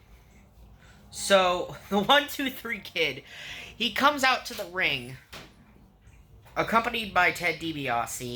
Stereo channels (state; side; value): identical; both; correlation 1.00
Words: So, the 1-2-3 Kid, he comes out to the ring, accompanied by Ted